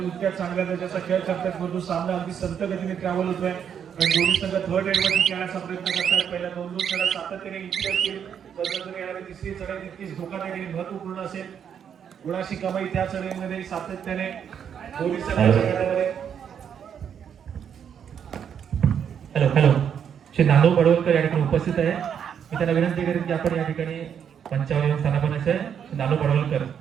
इतक्या चांगल्या दर्जाचा खेळ करतात, परंतु सामना अगदी संत गतीने ट्रॅव्हल होतोय. आणि दोन्ही संघ थर्ड रेड वरती खेळण्याचा प्रयत्न करतात. पहिल्या 2-2 चढा सातत्याने इतकी असतील, तर येणारी तिसरी चढाई तितकीच धोकादायक आणि महत्वपूर्ण असेल. गुणाशी कमाई त्या चढाईमध्ये सातत्याने दोन्ही संघांच्या गटामध्ये. हॅलो श्री नानू पडवलकर या ठिकाणी उपस्थित आहे. मी त्यांना विनंती करेन की आपण या ठिकाणी मंचावर येऊन स्थानापन्न आहे. नानू पडवलकर,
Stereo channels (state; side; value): quieter; left; 8.2 dB